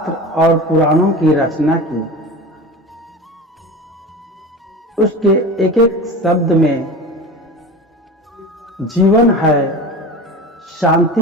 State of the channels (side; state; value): both; normal; correlation 0.32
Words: और पुराणों की रचना की, उसके एक एक शब्द में जीवन है,